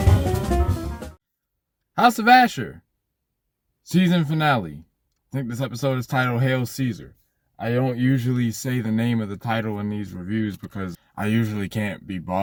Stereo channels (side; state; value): both; identical; correlation 1.00